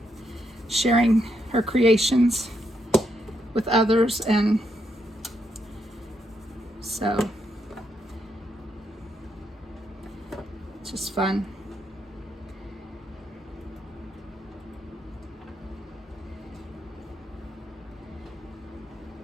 sharing her creations with others, and so it's just fun.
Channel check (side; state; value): both; normal; correlation 0.79